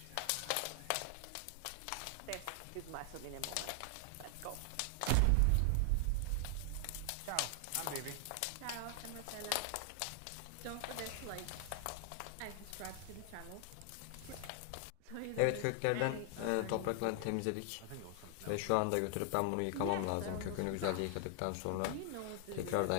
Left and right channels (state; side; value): different; both; correlation 0.00